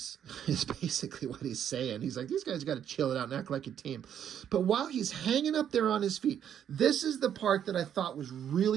is basically what he's saying. He's like, these guys got to chill it out and act like a team. But while he's hanging up there on his feet, this is the part that I thought was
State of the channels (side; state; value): left; quieter; 9.4 dB